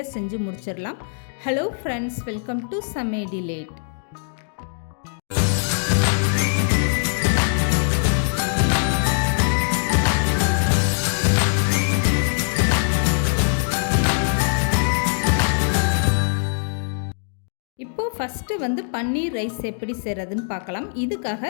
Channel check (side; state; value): right; silent; digital silence